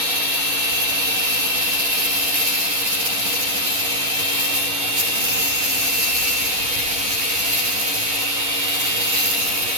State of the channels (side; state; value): left; late; 10 ms